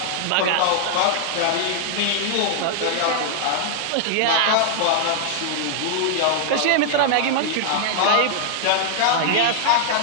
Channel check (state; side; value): different; both; correlation 0.00